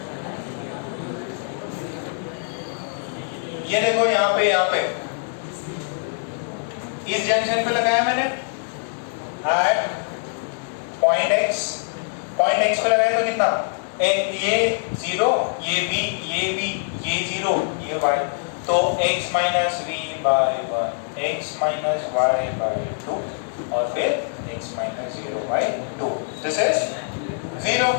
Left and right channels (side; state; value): right; silent; digital silence